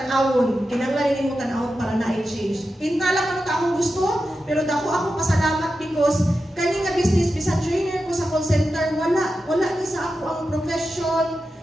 para na i-change. Pinta lang ano ta akong gusto, pero dako ako pasalamat because kani nga business bisan trainer ko sa call center, wala ni sa ako ang profession,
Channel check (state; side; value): normal; both; correlation 0.91